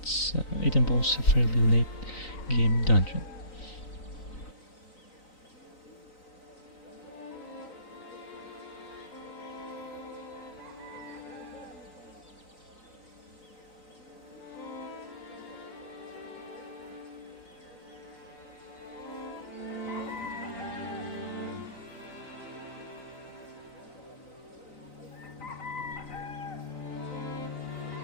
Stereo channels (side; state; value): right; late; 3.9 ms